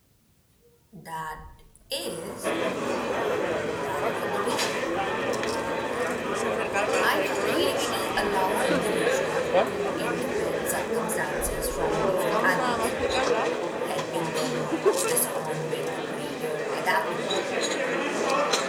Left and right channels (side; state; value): both; identical; correlation 1.00